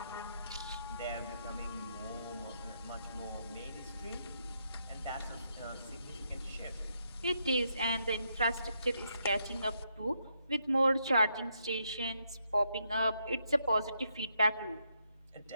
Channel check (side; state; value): both; inverted; correlation -0.78